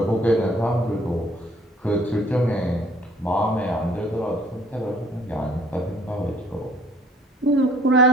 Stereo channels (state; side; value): normal; both; correlation 0.58